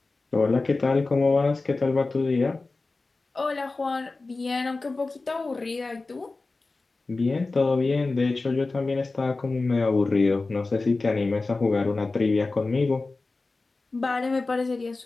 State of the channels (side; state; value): right; quieter; 3.5 dB